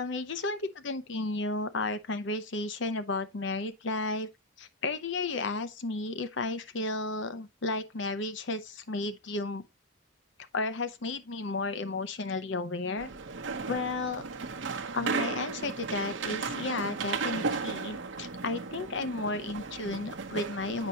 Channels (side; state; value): both; normal; correlation 0.00